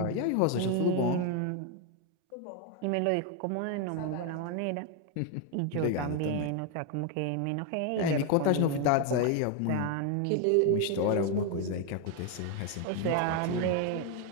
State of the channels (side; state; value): both; different; correlation 0.01